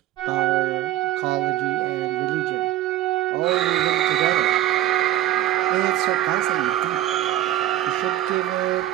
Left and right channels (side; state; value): left; quieter; 13.5 dB